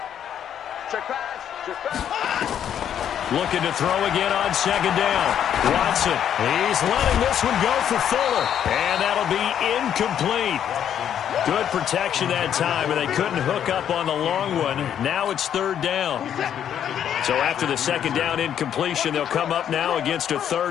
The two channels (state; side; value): quieter; right; 9.5 dB